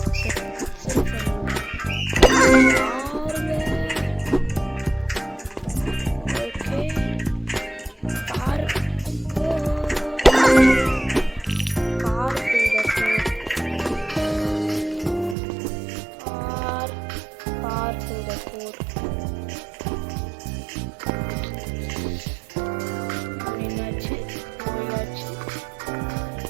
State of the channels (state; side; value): drops out; left; at 15.4 s